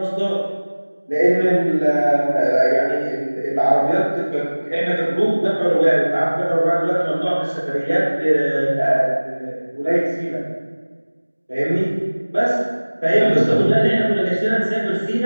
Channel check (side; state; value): both; inverted; correlation -1.00